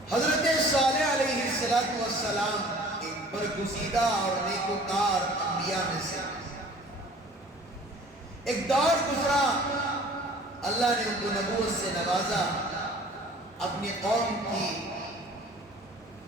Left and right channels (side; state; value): both; normal; correlation 0.49